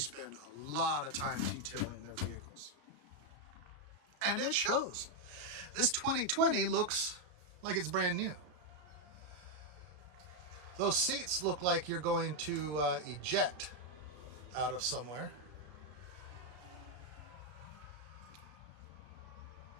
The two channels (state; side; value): late; left; 33 ms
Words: a lot of time detailing their vehicles. And it shows. This 2020 looks like it's brand new. Those seats look like you're going to eject out of somewhere.